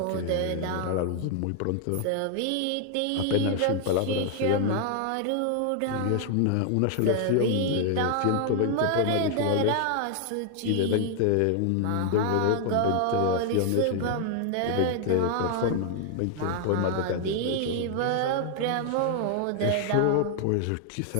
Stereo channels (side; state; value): both; different; correlation 0.00